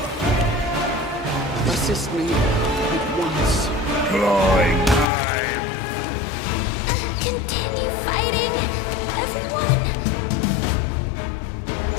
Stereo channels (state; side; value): drops out; right; at 5.1 s